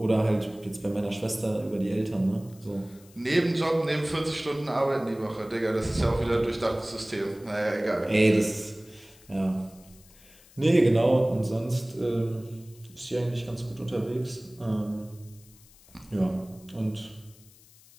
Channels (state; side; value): noise; left; hiss, 25 dB below the sound